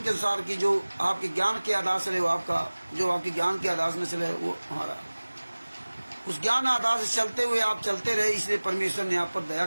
के अनुसार की जो आपके ज्ञान के आधार से वो आपका, जो आपके ज्ञान के आधार से चले, वो हमारा उस ज्ञान आधार से चलते हुए आप चलते रहे। इसलिए परमेश्वर ने आप पर दया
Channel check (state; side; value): inverted; both; correlation -1.00